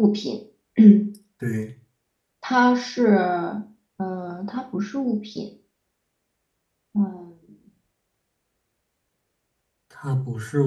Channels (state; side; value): identical; both; correlation 1.00